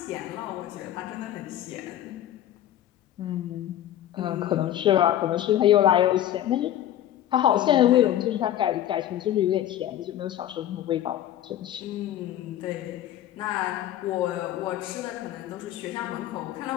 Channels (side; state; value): right; quieter; 11.9 dB